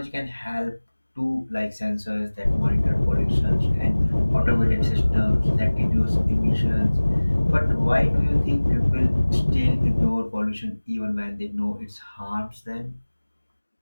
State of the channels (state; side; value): inverted; both; correlation -1.00